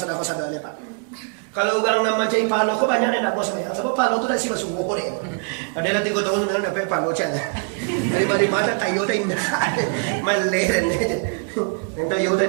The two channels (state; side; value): quieter; left; 37.3 dB